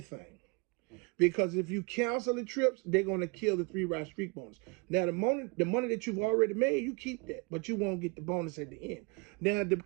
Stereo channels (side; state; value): left; quieter; 29.6 dB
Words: Because if you cancel the trips, they're going to kill the 3-ride streak bonus. Now, the money that you've already made, you keep that. But you won't get the bonus at the end. Now, the